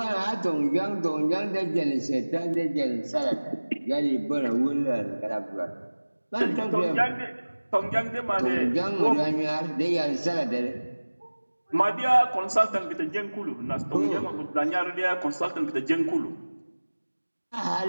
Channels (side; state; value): both; inverted; correlation -1.00